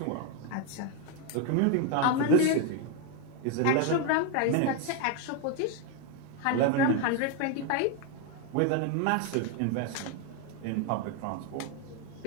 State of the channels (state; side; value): different; both; correlation 0.01